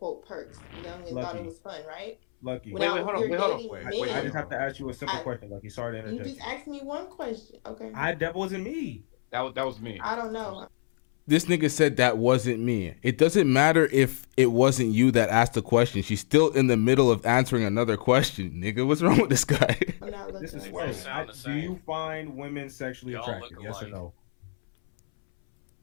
perks, you know, and thought it was fun, right? Lucky. Wait, hold on. I just have to ask you a simple question, Lucky. Sorry to You interject. just asked me one question, okay? That wasn't me. That was me. I don't know. This nigga said that wasn't me. It doesn't matter if it wasn't you that asked the question. She's still in the middle of answering another question. Nigga, what's wrong with this guy? This is Sway. Do you find women sexually attractive? Yes or no?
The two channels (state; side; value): silent; right; 60 dB below the other